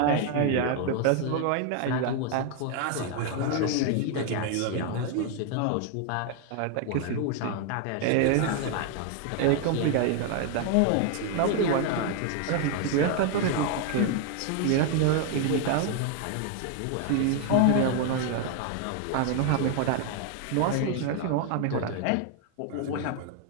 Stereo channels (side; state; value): both; different; correlation 0.01